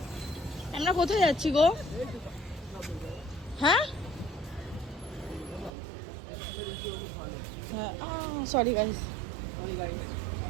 আমরা কোথায় যাচ্ছি গো? হ্যাঁ সরি গাইস,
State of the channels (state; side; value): drops out; left; at 5.7 s